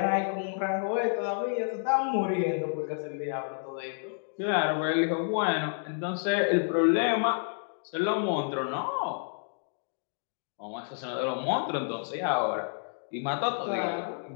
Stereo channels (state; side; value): silent; right; digital silence